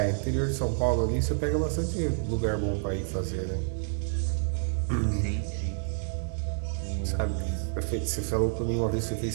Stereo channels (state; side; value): silent; left; 59 dB below the other